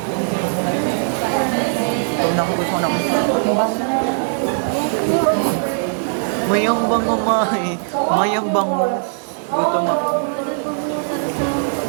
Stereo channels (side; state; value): left; silent; 66 dB below the other